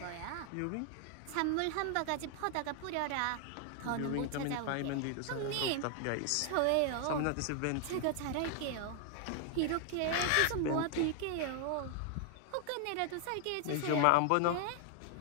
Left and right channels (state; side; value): different; both; correlation 0.00